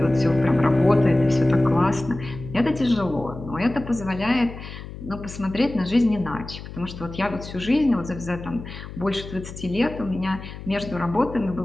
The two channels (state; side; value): noise; left; hum, 12 dB below the sound